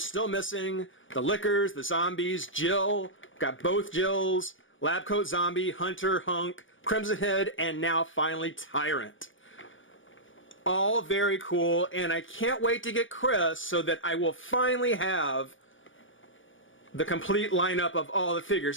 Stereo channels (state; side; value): late; right; 0.57 ms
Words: missing, the Lickers, the Zombies, Jill, got both Jills, Lab Coat Zombie, Hunter, Hunk, Crimson Head, and now finally Tyrant. All very cool, and I can't wait to get Chris so that I will finally have the complete lineup of all the